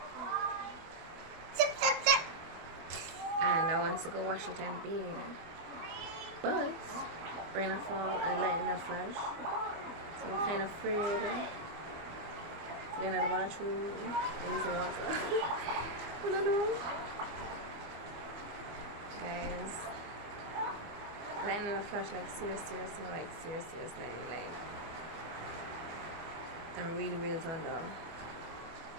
Zip, zip, zip. And I want to go wash it and bathe. But rain a fall and lightning a flash. So I'm kind of afraid to get into the bathroom and use the water. I don't know. Guys. Lightning a flash like serious, like I'm really turned on.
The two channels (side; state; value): left; late; 24 ms